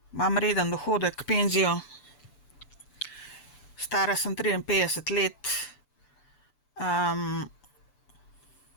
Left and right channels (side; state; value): right; late; 6.9 ms